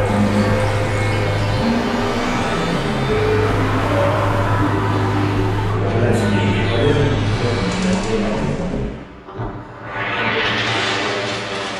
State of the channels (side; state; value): both; identical; correlation 1.00